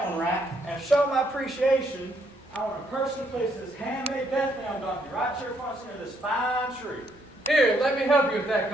one right. And to show my appreciation, I want to personally place this handmade Bethlehem donkey right here in front of this fine tree. Here, let me help you with that,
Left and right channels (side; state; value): both; normal; correlation 0.72